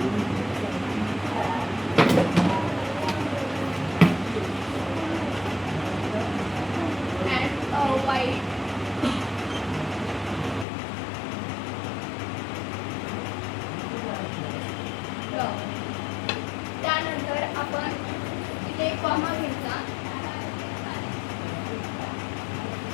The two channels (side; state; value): right; drops out; at 10.7 s